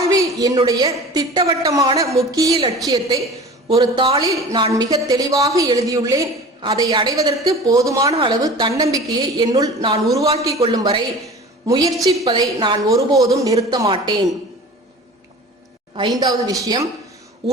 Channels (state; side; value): normal; both; correlation 0.39